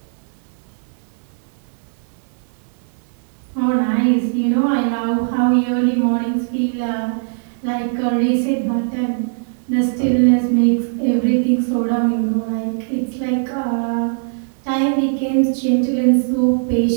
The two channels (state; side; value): silent; left; digital silence